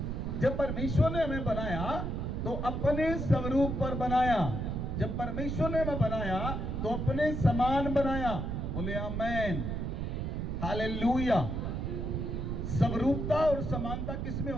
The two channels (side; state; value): right; noise; rumble, 2 dB below the sound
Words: जब परमेश्वर ने हमें बनाया तो अपने स्वरूप पर बनाया। जब परमेश्वर ने हमें बनाया तो अपने समान बनाया। बोले आमेन, हालेलुया। स्वरूपता और समानता किसमें